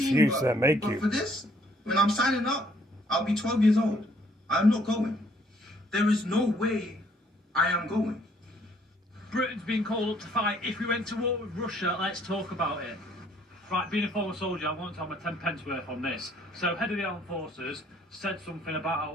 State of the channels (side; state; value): both; normal; correlation 0.64